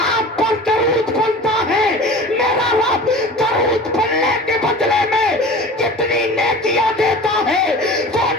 پر درود پڑھتا ہے میرا رب درود پڑھنے کے بدلے میں کتنی نیکیاں دیتا ہے وہ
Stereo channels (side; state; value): both; normal; correlation 0.38